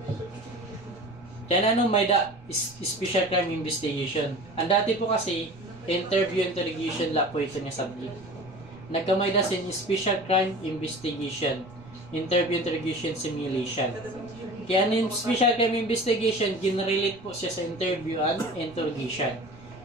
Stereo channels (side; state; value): right; noise; rumble, 23 dB below the sound